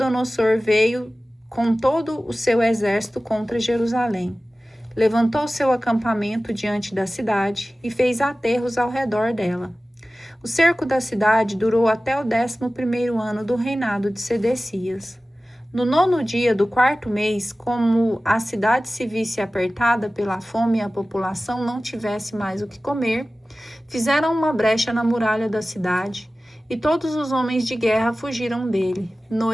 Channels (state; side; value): normal; both; correlation 0.96